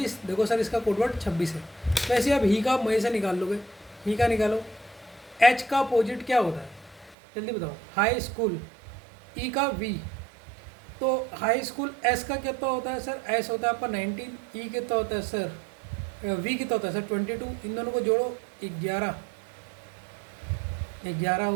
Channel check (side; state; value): left; drops out; at 7.2 s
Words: देखो सर इसका कोडवर्ड 26 है। वैसे अब ही का आप मई से निकाल लोगे, ही का निकालो। एच का अपोजिट क्या होता है जल्दी बताओ, हाई स्कूल। ई का वी, तो हाई स्कूल। एस का कितना होता है सर, एस होता है आपका 19। ई कितना होता है सर, वी कितना होता है सर 22। इन दोनों को जोड़ो 11, 11